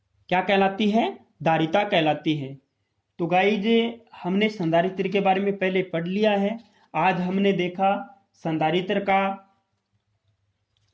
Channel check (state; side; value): identical; both; correlation 1.00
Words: क्या कहलाती है? धारिता कहलाती है। तो गाइज हमने संधारित्र के बारे में पहले पढ़ लिया है। आज हमने देखा संधारित्र का